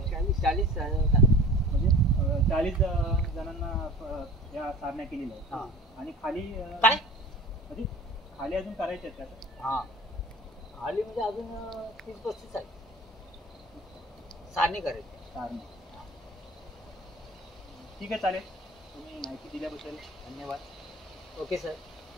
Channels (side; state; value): both; normal; correlation 0.40